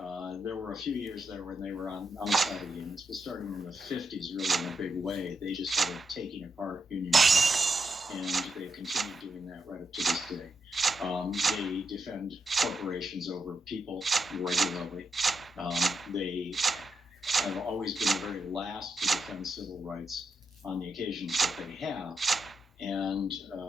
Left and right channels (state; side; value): normal; both; correlation 0.84